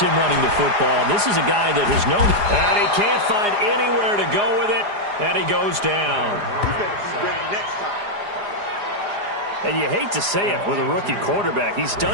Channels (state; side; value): late; left; 4.9 ms